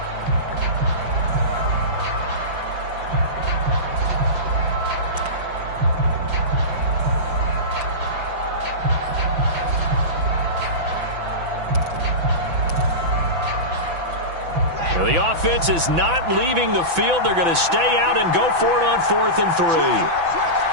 The offense is not leaving the field. They're going to stay out and go for it on 4th and 3.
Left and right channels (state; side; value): late; left; 5.9 ms